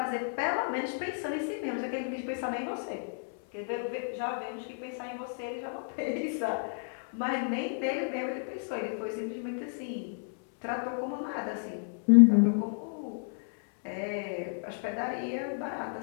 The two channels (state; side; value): silent; right; 57 dB below the other